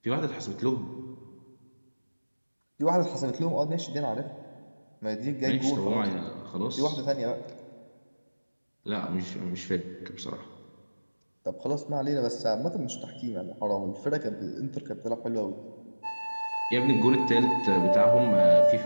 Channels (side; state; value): both; inverted; correlation -1.00